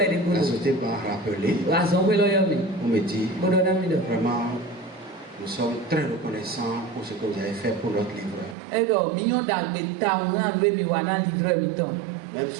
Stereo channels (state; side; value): drops out; left; at 8.6 s